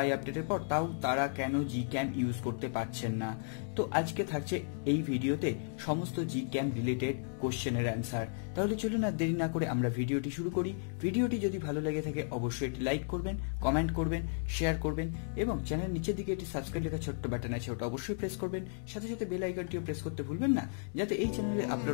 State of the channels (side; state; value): right; silent; digital silence